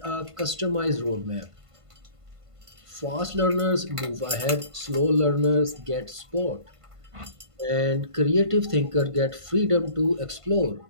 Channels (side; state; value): left; late; 1.5 ms